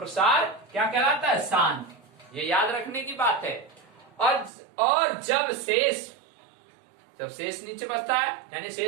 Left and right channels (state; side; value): drops out; left; at 4.5 s